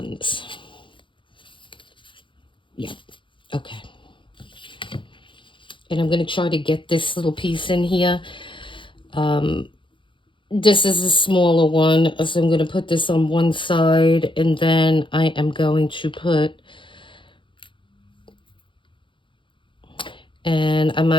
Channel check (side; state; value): right; late; 0.24 ms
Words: Yep, okay. And I'm going to try to get this little piece in here. This is a smaller one, so I'm going to put this on one side, and then I am going to put, and I